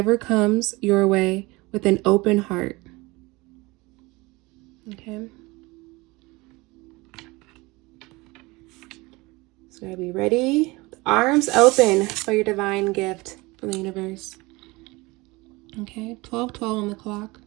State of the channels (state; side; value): quieter; left; 23.2 dB